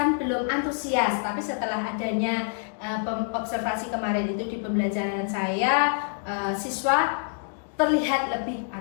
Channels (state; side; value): silent; right; digital silence